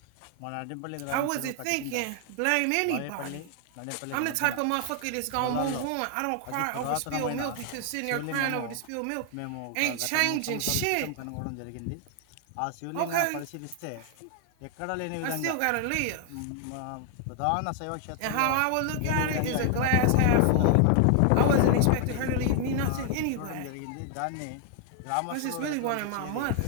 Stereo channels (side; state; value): both; different; correlation 0.00